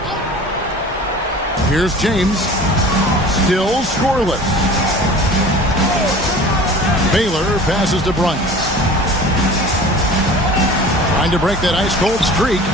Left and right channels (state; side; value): normal; both; correlation 0.41